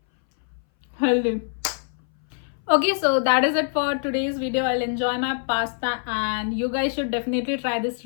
healthy. Okay, so that is it for today's video. I'll enjoy my pasta and you guys should definitely try this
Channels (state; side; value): silent; right; 60 dB below the other